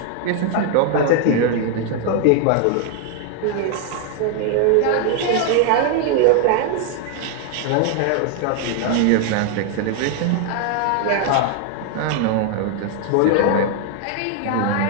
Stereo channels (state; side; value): different; both; correlation 0.00